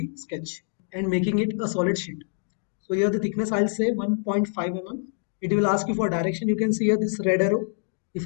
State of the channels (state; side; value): silent; right; 61 dB below the other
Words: sketch and making it a solid sheet. So here the thickness I'll say 1.5 mm. It will ask you for direction. You can see here this red arrow. If